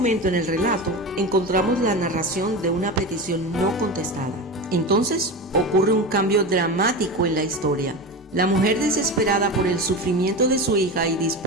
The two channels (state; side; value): normal; both; correlation 0.24